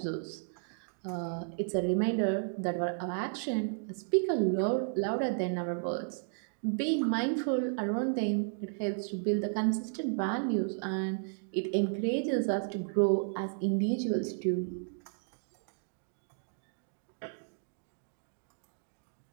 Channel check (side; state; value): left; silent; digital silence